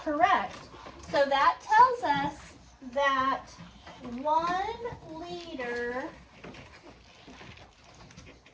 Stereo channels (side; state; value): both; identical; correlation 1.00